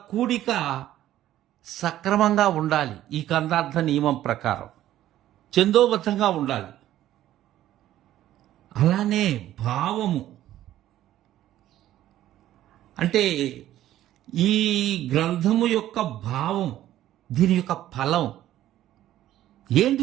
కూడిక సక్రమంగా ఉండాలి. ఈ కందార్థ నియమం ప్రకారం ఛందోబద్ధంగా ఉండాలి. అలానే భావము అంటే ఈ గ్రంథము యొక్క భావం, దీని యొక్క ఫలం ఏంటి,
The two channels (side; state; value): left; quieter; 13.2 dB